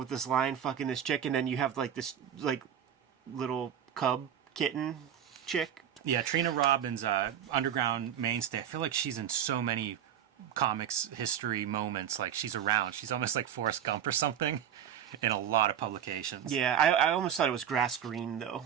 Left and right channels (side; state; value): left; quieter; 9.4 dB